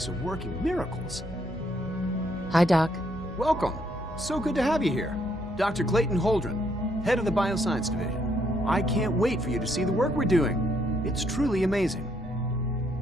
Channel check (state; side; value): normal; both; correlation 0.72